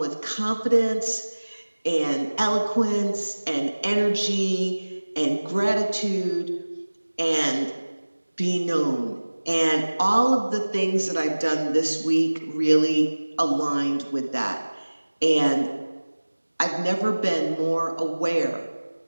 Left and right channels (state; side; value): inverted; both; correlation -1.00